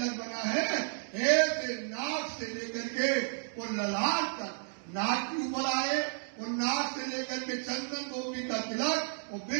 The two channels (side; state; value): left; silent; digital silence